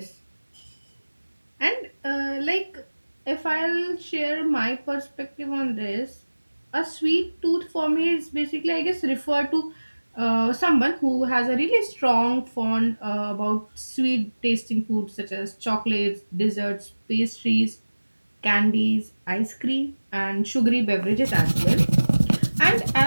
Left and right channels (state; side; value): inverted; both; correlation -1.00